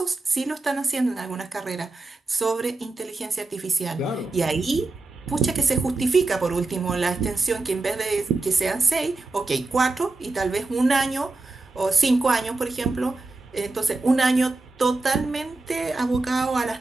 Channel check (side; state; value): left; quieter; 3.2 dB